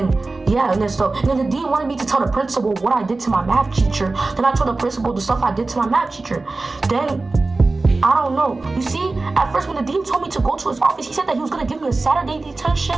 the dean wanted me to tell the principal what I did to my math teacher. Then I told the principal the stuff I did to my math teacher. Then I don't know. You see, at first when the dean told me to go to his office, he said that he was gonna give me a Saturday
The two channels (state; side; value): quieter; left; 3.4 dB